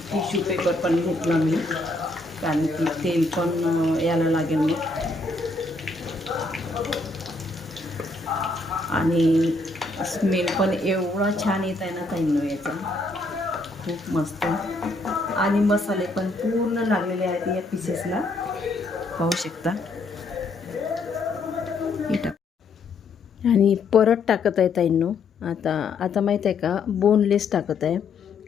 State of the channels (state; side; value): quieter; right; 3.4 dB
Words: टिश्यू पेपर पण घेतला मी, कारण की तेल पण यायला लागेल मग. आणि स्मेल पण एवढा छान येत आहे ना ताईंनो याचा, खूप मस्त. आणि मसाले पण पूर्ण लागलेले आहेत या पीसेसला, पाहू शकता. आणि परत टाकत आहे ताईंनो. आता माहीत आहे का, बोनलेस टाकत आहे,